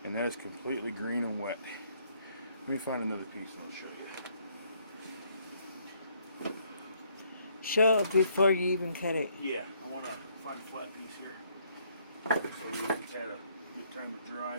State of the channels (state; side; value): inverted; both; correlation -0.68